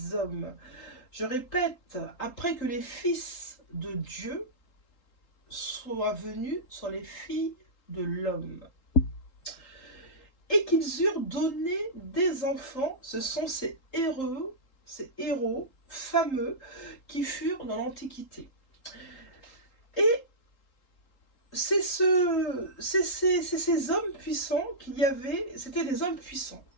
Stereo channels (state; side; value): late; right; 3.8 ms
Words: hommes. Je répète, après que les fils de Dieu soient venus sur les filles de l'homme. Et qu'ils eurent donné des enfants, ce sont ces héros fameux qui furent dans l'Antiquité. Et c'est ces hommes puissants qu'il y avait, c'était des hommes puissants,